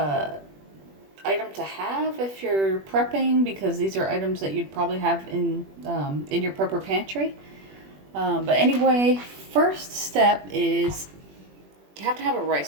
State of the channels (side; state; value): left; late; 21 ms